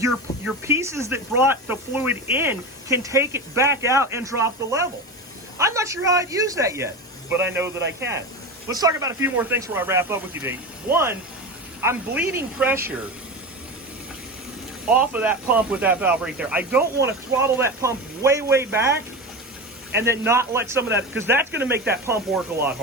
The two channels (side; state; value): both; normal; correlation 0.24